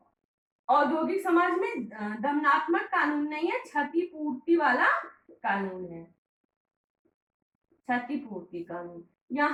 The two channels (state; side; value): identical; both; correlation 1.00